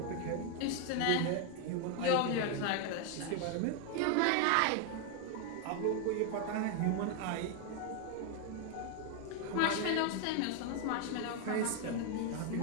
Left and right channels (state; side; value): different; both; correlation 0.01